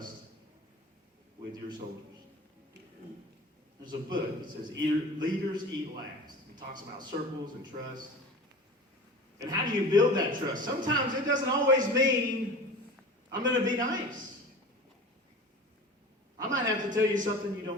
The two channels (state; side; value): normal; both; correlation 0.36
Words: with your soldiers. There's a book that says Leaders Eat Last. It talks about circles and trust. And how do you build that trust? Sometimes it doesn't always mean I'm going to be nice. I might have to tell you something you